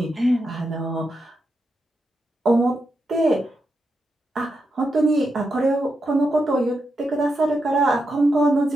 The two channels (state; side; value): normal; both; correlation 0.85